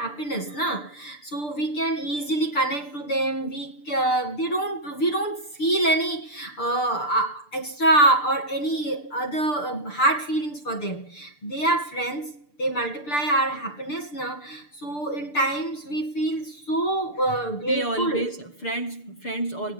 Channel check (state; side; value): late; right; 6.8 ms